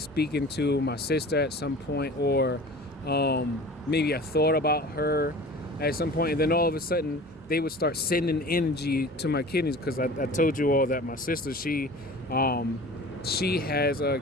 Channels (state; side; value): normal; both; correlation 0.40